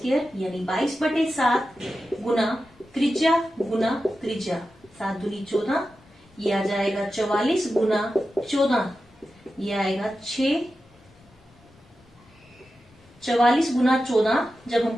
यानी 22/7 गुना त्रिज्या, 7 दूनी 14, ये आ जाएगा 44 गुना 14, ये आएगा 6। 44 गुना 14 जब हम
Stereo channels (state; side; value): normal; both; correlation 0.92